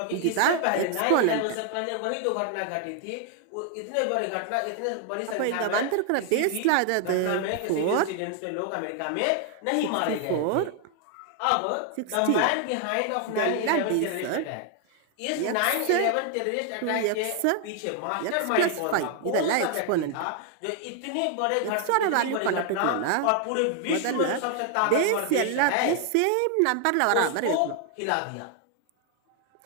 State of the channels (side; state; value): both; different; correlation 0.00